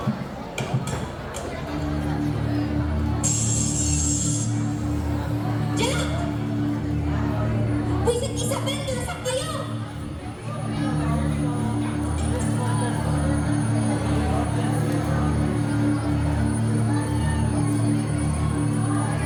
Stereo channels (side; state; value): both; identical; correlation 1.00